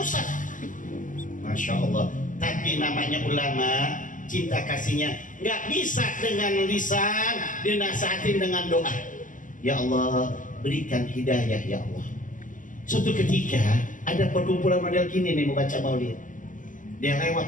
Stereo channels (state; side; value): late; right; 0.38 ms